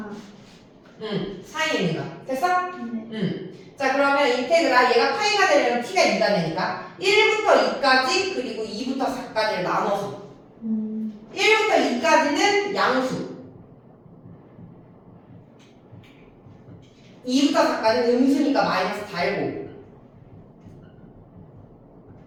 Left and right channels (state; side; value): identical; both; correlation 1.00